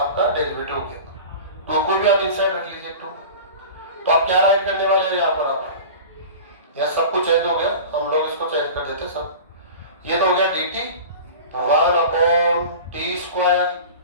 डेरिवेटिव हो गया, तो को भी आप इनसाइड रख लीजिए 2। तो आप क्या राइट करने वाले हैं यहाँ पर? आप यहाँ सब कुछ चेंज हो गया, हम लोग इसको चेंज कर देते सब। ये तो हो गया dt 1 upon t square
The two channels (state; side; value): inverted; both; correlation -0.36